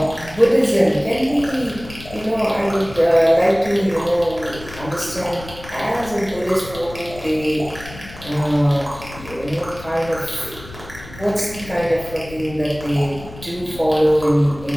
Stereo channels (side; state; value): left; noise; rumble, 16 dB below the sound